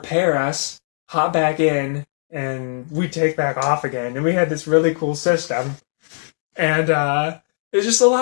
us, hop back in, and we take back off again. And we had this really cool system. And it's just a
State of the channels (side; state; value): right; silent; digital silence